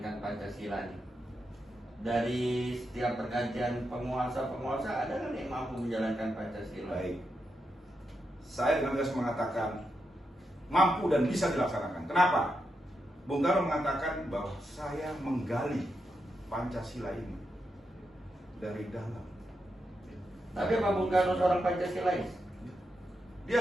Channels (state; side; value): normal; both; correlation 0.85